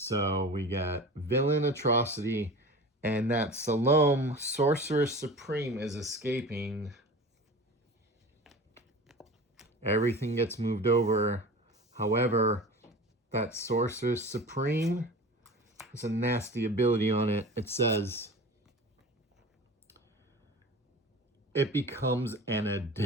we got Villain Atrocity, and that Salome Sorceress Supreme is escaping. Everything gets moved over. However, that Sorceress Supreme has a nasty ability on it. It says it becomes an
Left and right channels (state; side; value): normal; both; correlation 0.36